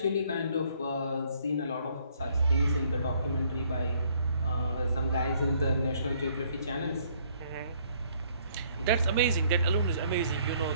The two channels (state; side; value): inverted; both; correlation -0.64